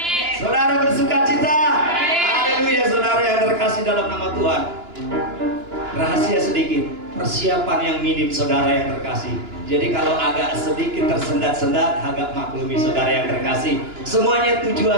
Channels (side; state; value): left; late; 2.9 ms